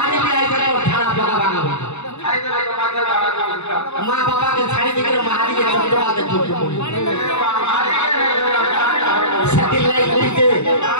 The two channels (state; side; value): late; right; 0.81 ms